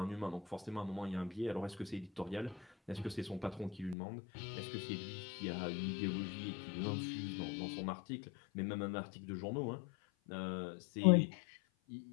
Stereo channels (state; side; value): drops out; right; at 4.0 s